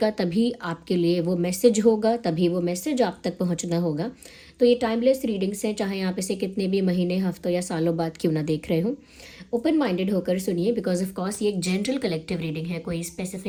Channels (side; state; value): both; identical; correlation 1.00